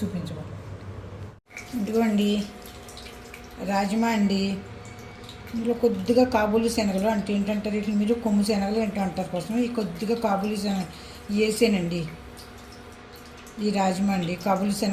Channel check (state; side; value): identical; both; correlation 1.00